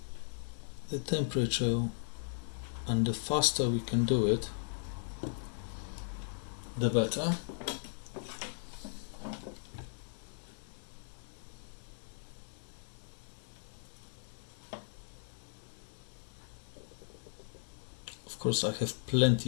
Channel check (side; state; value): right; silent; digital silence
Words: the temperature and the faster we can do it, the better. Of course, I have